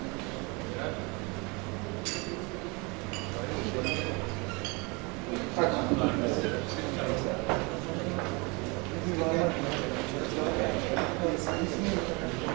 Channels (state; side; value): quieter; left; 28.7 dB